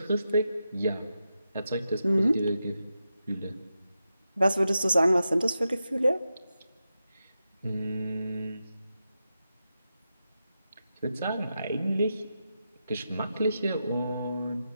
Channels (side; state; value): both; inverted; correlation -0.88